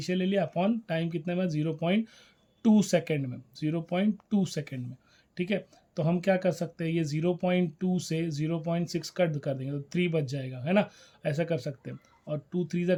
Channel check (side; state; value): both; identical; correlation 1.00